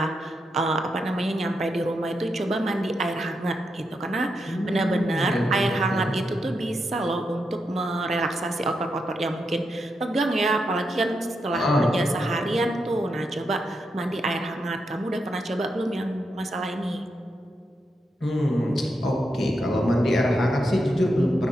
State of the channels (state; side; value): normal; both; correlation 0.84